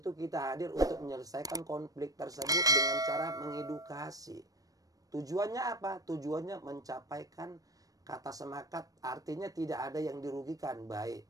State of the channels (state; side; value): late; left; 0.18 ms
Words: kita hadir untuk menyelesaikan konflik tersebut dengan cara mengedukasi. Tujuannya apa? Tujuannya mencapaikan kata sepakat, artinya tidak ada yang dirugikan, baik